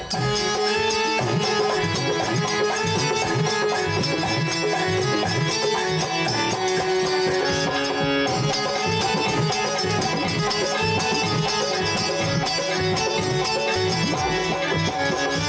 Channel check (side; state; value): both; identical; correlation 1.00